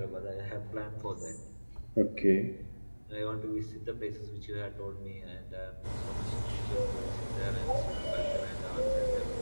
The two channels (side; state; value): both; inverted; correlation -1.00